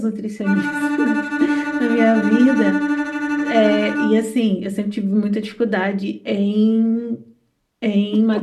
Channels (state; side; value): identical; both; correlation 1.00